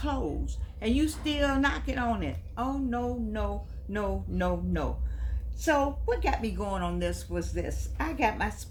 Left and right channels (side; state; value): both; identical; correlation 1.00